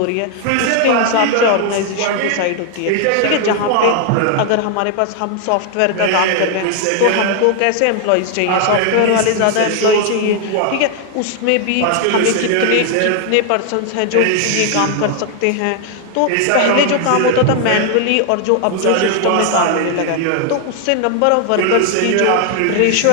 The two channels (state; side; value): different; both; correlation 0.00